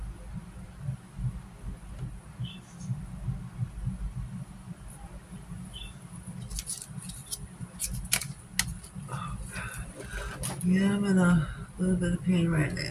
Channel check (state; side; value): identical; both; correlation 1.00